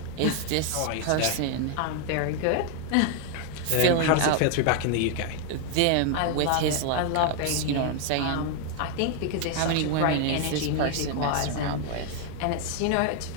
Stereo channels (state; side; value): different; both; correlation 0.00